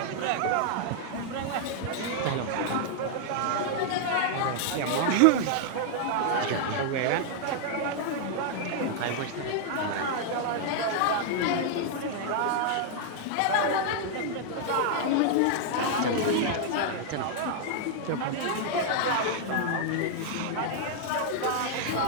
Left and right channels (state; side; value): different; both; correlation -0.01